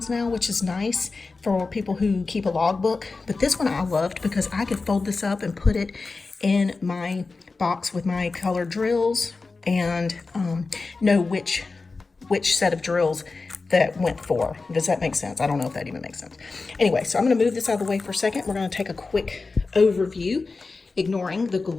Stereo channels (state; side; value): quieter; right; 4.0 dB